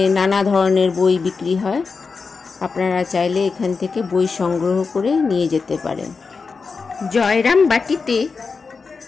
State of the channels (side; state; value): right; quieter; 4.8 dB